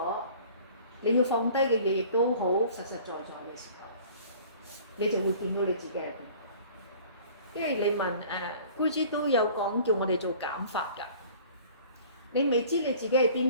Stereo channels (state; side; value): inverted; both; correlation -0.48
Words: 你要放低嘅嘢亦都好實實在在嘅時候，你就會見到你自己係邊。因為你問姑姐都有講叫我哋做減法㗎，你未知你自己係